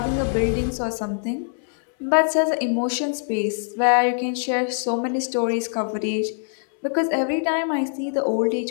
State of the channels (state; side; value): silent; right; 63 dB below the other